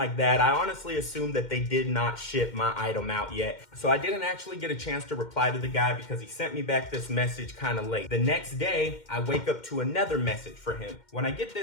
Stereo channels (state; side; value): late; right; 2.1 ms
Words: that. I honestly assume that they did not ship my item out yet. So I didn't actually get a chance to reply to the guy because he sent me back this message kind of late. The next day, I wake up to another message for him. When I get